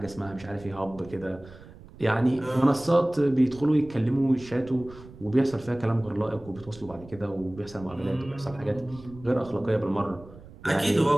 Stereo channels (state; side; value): noise; right; rumble, 19 dB below the sound